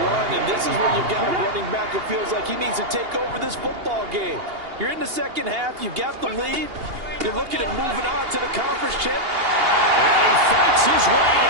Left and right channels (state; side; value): late; left; 2.8 ms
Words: run, and this is where you've got a running back who feels like he needs to take over this football game. You're in the second half. You've got the lead. You're looking at moving on to the conference chip. And he fights his way